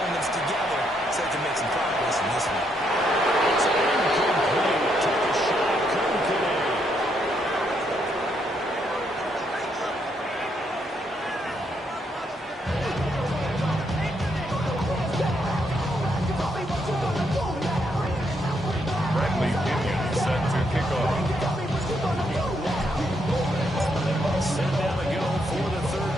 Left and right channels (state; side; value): normal; both; correlation 0.76